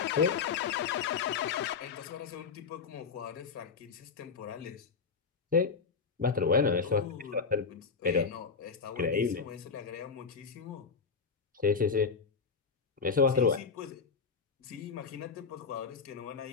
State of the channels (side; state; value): right; quieter; 5.4 dB